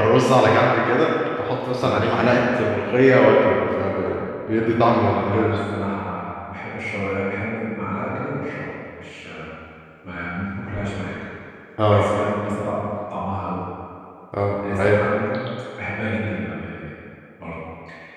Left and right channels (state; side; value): identical; both; correlation 1.00